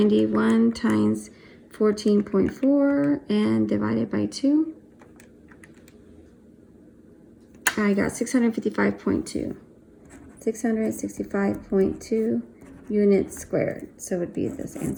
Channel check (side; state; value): both; identical; correlation 1.00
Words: times 14.4 and divided by 2. I got 655.2. 665.2 units squared. So it would be this